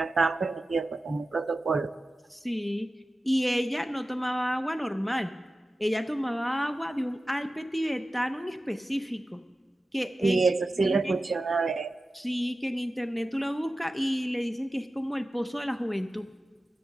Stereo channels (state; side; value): normal; both; correlation 0.94